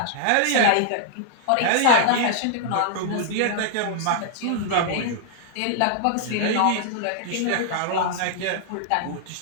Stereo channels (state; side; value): different; both; correlation -0.01